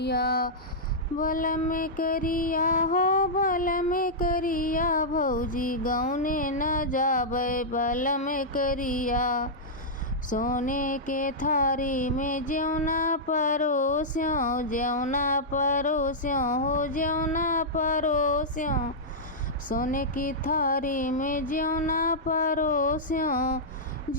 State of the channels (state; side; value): normal; both; correlation -0.10